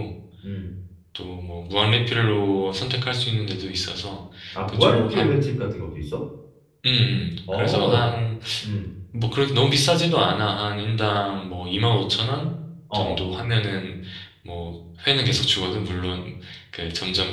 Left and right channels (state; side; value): identical; both; correlation 1.00